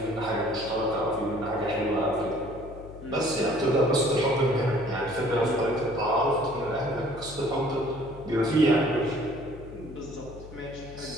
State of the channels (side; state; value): left; noise; hum, 16 dB below the sound